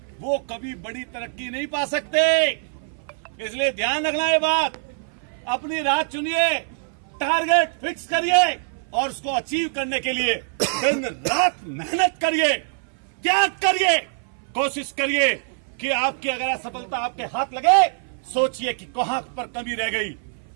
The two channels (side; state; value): left; silent; 58 dB below the other